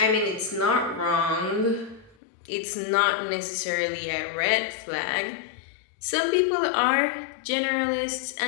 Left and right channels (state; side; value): drops out; right; at 2.1 s